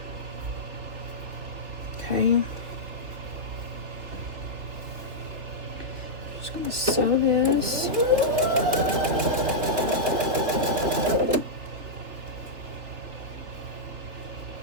Okay. Just gonna sew this.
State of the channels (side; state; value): left; late; 3.3 ms